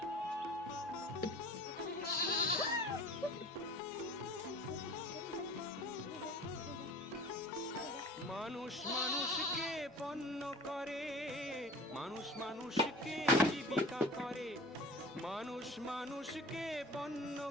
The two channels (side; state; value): right; noise; hum, 28 dB below the sound